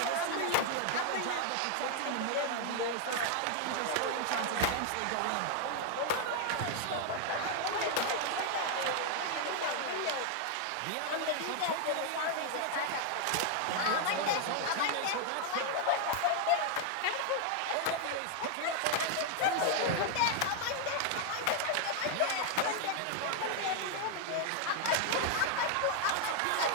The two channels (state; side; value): different; both; correlation 0.00